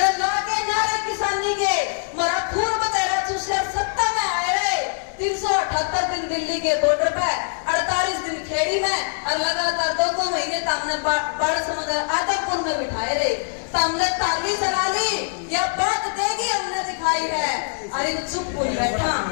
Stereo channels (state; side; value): silent; right; digital silence